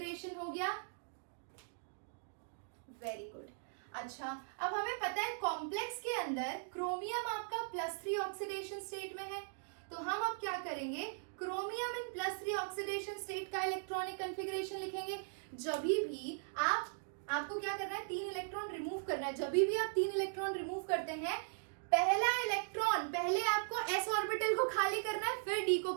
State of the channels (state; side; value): silent; left; digital silence